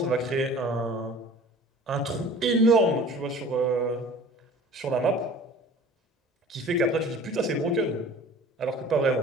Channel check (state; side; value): normal; both; correlation 0.45